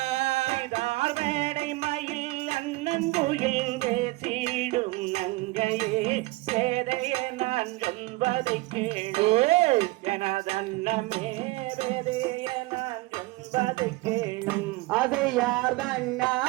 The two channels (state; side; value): quieter; left; 21.3 dB